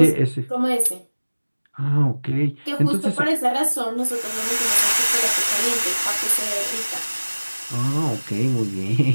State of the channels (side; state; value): both; inverted; correlation -1.00